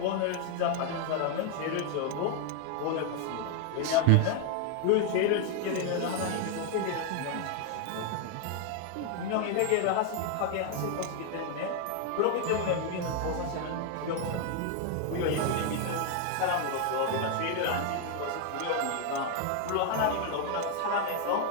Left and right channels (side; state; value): both; different; correlation 0.01